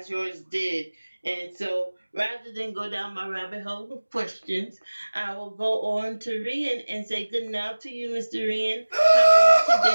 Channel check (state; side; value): inverted; both; correlation -1.00